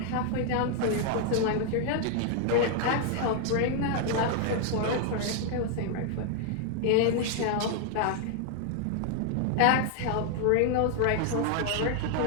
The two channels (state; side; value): different; both; correlation 0.00